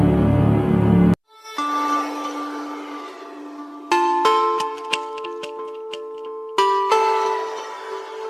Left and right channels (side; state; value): both; identical; correlation 1.00